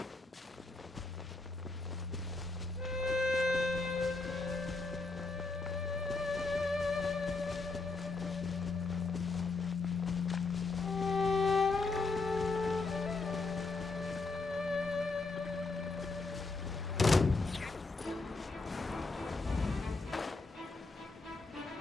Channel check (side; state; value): right; quieter; 3.7 dB